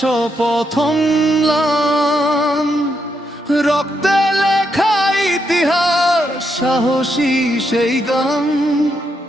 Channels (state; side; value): normal; both; correlation 0.80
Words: ম্লান। রক্তে লেখা ইতিহাস, সাহসী সেই গান,